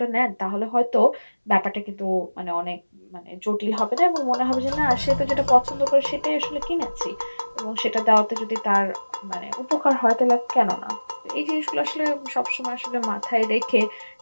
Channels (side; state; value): both; inverted; correlation -1.00